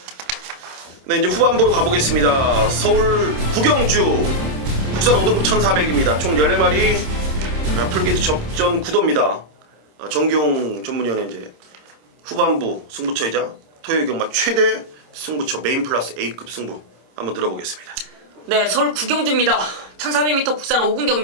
네, 이제 후반부로 가보겠습니다. 서울 구경주 국산 5등급 1400입니다. 총 14마리 풀게이트 접전 구도입니다. 정기용 전문위원회 이제 후반부 승부처이자 토요일 경마 최대 승부처 메인 플러스 A급 승부 한번 들어보겠습니다. 네, 서울 구경주입니다. 1400m 국산 5군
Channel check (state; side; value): late; left; 26 ms